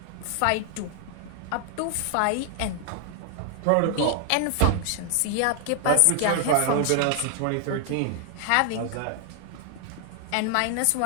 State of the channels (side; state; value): both; different; correlation 0.00